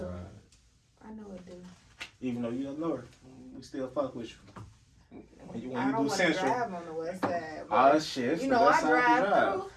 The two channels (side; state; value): both; identical; correlation 1.00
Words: I know it do. Even though you up north, we still fuck with you. When you I don't do want to Central. drive on the West Side. Oh shit! You know, I drive through.